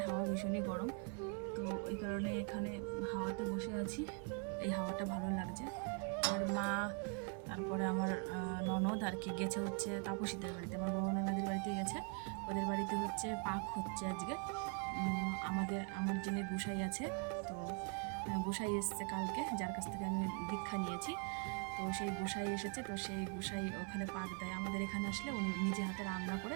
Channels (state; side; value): quieter; left; 36.3 dB